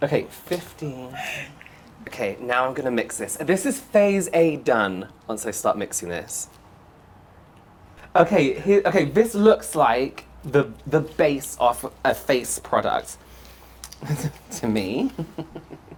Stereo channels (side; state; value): both; identical; correlation 1.00